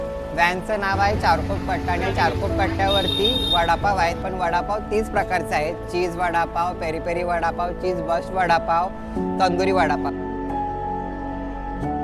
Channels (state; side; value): identical; both; correlation 1.00